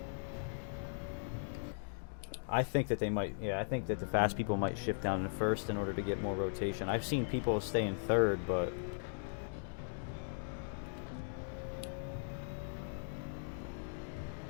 I think that they might, yeah, I think that the fast people might shift down to first in order to get more rotation. I've seen people stay in third, but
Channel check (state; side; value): silent; right; digital silence